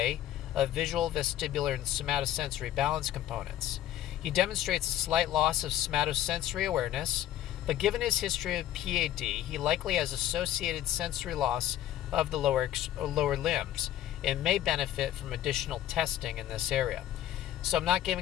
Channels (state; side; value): quieter; right; 12.4 dB